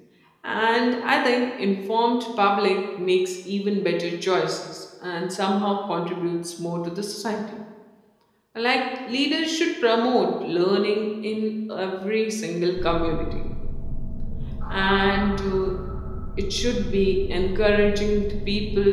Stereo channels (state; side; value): identical; both; correlation 1.00